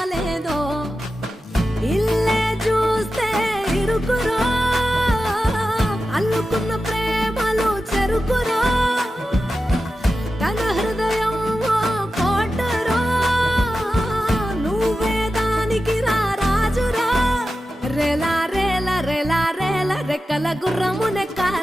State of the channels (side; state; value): both; normal; correlation 0.92